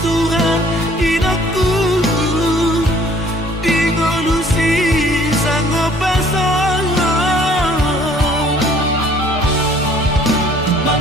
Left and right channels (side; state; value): both; normal; correlation 0.57